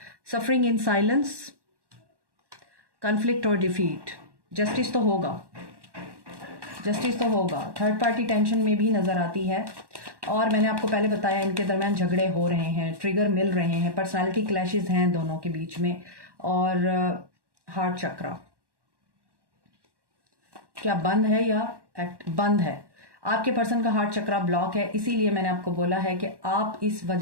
सफरिंग इन साइलेंस, कन्फ्लिक्ट और डिफीट। जस्टिस तो होगा, जस्टिस तो होगा। थर्ड पार्टी टेंशन में भी नज़र आती है, और मैंने आपको पहले बताया इनके दरमियान झगड़े हो रहे हैं, ट्रिगर मिल रहे हैं, पर्सनालिटी क्लैशेस हैं दोनों के बीच में। और हार्ट चक्रा क्या बंद है या बंद है? आपके पर्सन का हार्ट चक्रा ब्लॉक है, इसीलिए मैंने आपको बोला है कि आप इस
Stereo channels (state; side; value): late; left; 1.1 ms